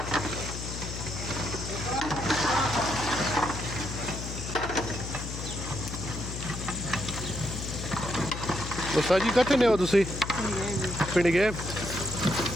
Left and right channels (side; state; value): left; noise; hum, 7 dB below the sound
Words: तो सर जी कितने हो तुसी पिंड गए